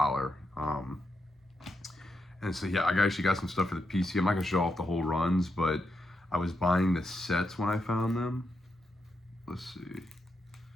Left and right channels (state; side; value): normal; both; correlation 0.84